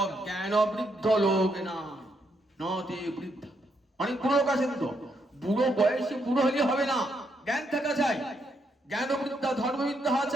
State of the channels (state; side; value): normal; both; correlation 0.77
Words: জ্ঞানবৃদ্ধ লোক না, নতে বৃদ্ধ। অনেক বুড়ো লোক আছেন, তো বুড়ো বয়সে বুড়ো হলে হবে না, জ্ঞান থাকা চাই, জ্ঞানবৃদ্ধা ধর্মবিদ্যা হওয়া